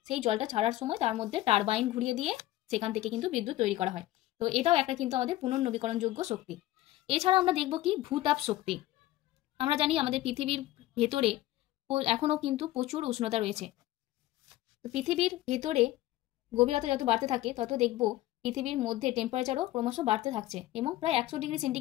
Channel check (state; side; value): quieter; right; 15.8 dB